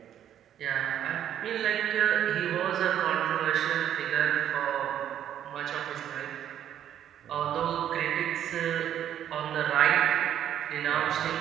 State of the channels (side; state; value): left; quieter; 10.4 dB